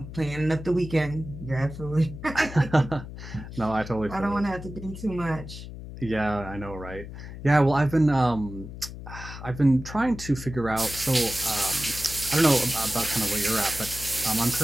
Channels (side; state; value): left; noise; hum, 11 dB below the sound